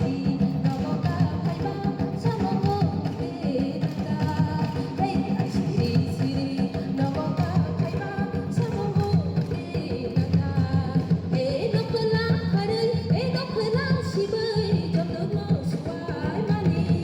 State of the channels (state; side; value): identical; both; correlation 1.00